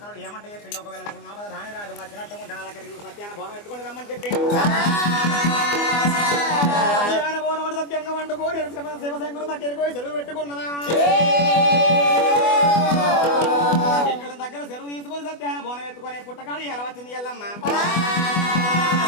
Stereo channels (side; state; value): right; late; 24 ms